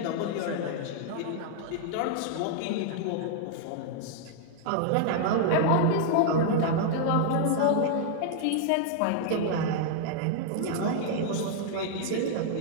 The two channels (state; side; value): different; both; correlation -0.01